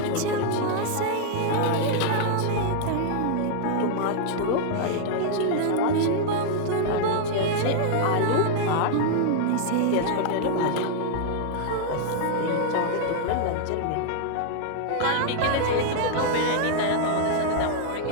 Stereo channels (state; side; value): different; both; correlation -0.01